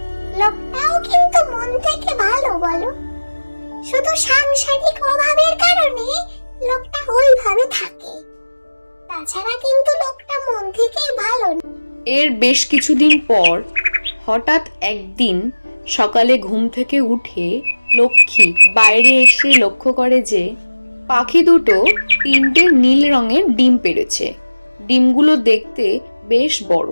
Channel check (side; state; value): both; inverted; correlation -1.00